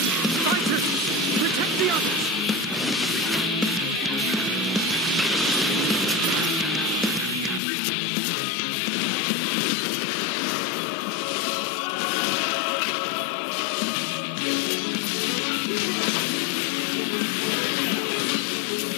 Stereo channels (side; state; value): right; drops out; at 7.6 s